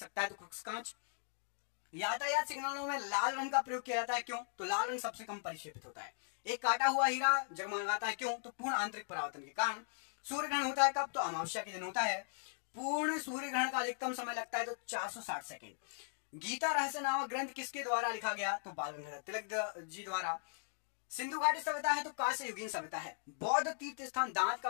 है? तो क्रुक्स कांच। यातायात सिग्नलों में लाल रंग का प्रयोग किया जाता है, क्यों? तो लाल रंग सबसे कम परिक्षेपित होता है। एक काटा हुआ हीरा जगमगाता है, क्यों? तो पूर्ण आंतरिक परावर्तन के कारण। सूर्य ग्रहण होता है कब? तो अमावस्या के दिन होता है। पूर्ण सूर्य ग्रहण का अधिकतम समय लगता है तो 460 सेकेंड। गीता रहस्य नामक ग्रंथ किसके द्वारा लिखा गया? तो बाल गंगाधर तिलक जी द्वारा। सिंधु घाटी सभ्यता है तो कांस्य युगीन सभ्यता है। बौद्ध तीर्थ स्थान दांत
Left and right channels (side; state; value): right; silent; digital silence